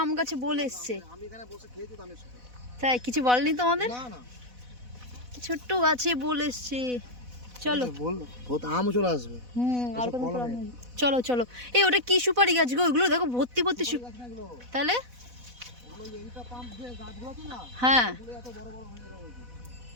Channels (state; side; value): late; left; 4.1 ms